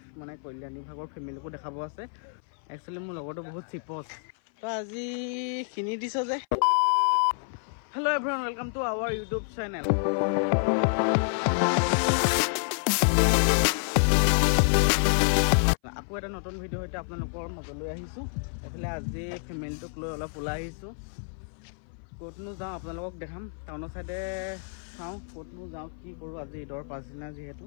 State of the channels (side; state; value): right; silent; 57 dB below the other